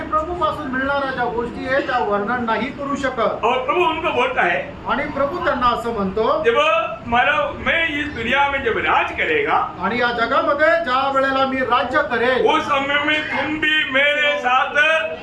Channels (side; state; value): both; identical; correlation 1.00